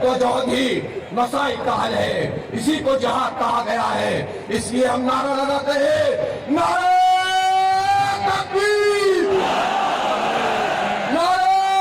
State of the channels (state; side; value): identical; both; correlation 1.00